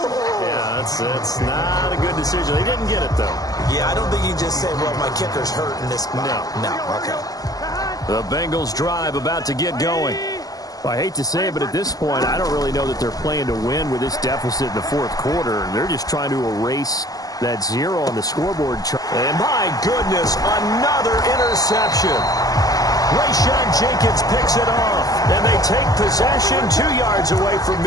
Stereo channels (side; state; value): right; late; 0.17 ms